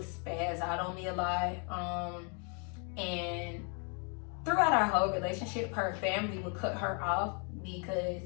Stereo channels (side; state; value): right; quieter; 38.3 dB